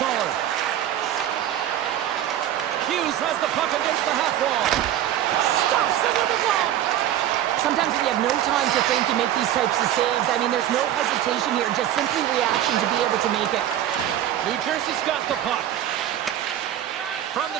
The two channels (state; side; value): quieter; left; 11.7 dB